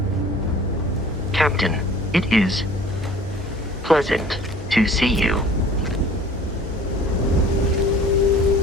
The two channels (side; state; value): both; normal; correlation 0.48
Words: Captain, it is pleasant to see you.